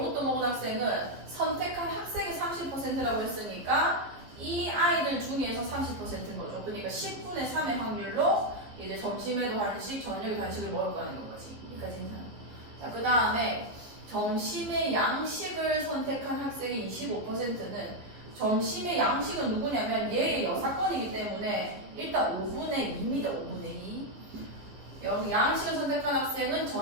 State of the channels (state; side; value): late; left; 14 ms